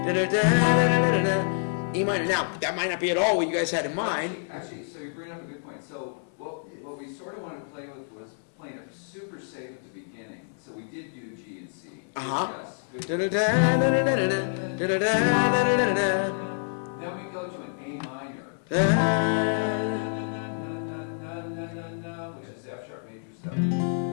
minor. Now that might not be at all what you guys had in mind. Actually, so you bring up a good point. So what we sort of wanted to play with was playing it super safe at the beginning. So we did do G and C. Yes. Then we go to an A minor, which is F sharp major 7.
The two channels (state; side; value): silent; right; 60 dB below the other